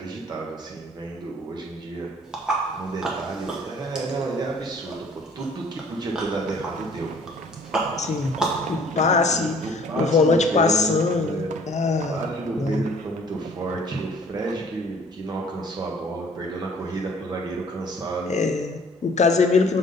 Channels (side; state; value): both; normal; correlation 0.54